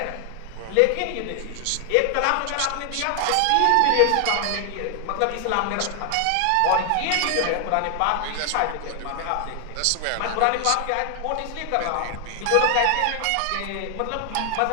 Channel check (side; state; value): both; different; correlation 0.00